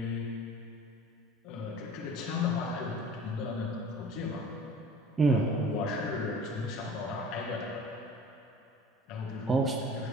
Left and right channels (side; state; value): both; normal; correlation 0.44